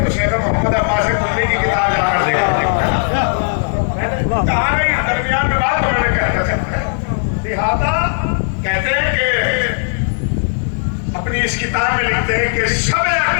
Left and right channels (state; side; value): silent; right; digital silence